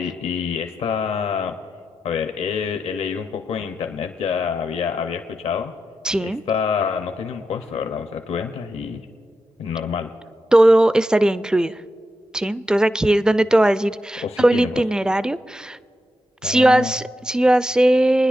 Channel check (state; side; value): normal; both; correlation 0.87